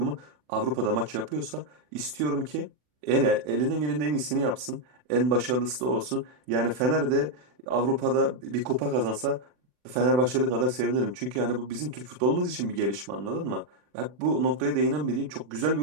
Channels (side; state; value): left; late; 40 ms